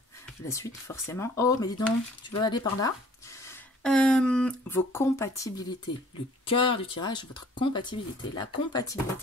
La suite, forcément. Oh, mais dis donc, tu veux aller par là. Vos compatibilités. Le cœur du tirage, votre compatibilité. La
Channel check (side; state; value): both; normal; correlation 0.54